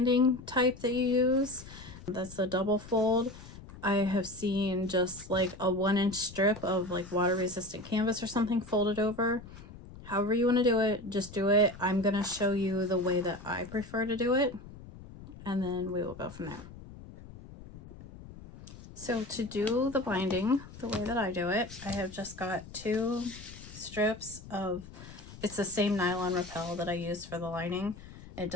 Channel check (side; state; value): left; noise; rumble, 16 dB below the sound